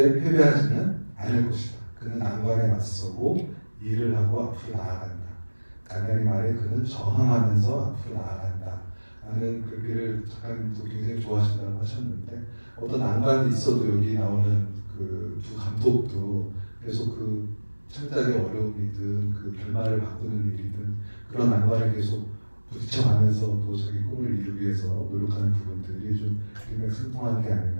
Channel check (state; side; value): inverted; both; correlation -1.00